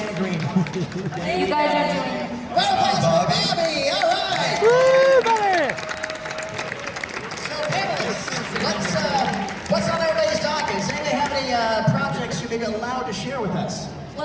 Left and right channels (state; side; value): identical; both; correlation 1.00